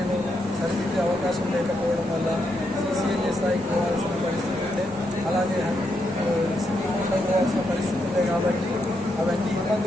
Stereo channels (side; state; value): both; normal; correlation 0.81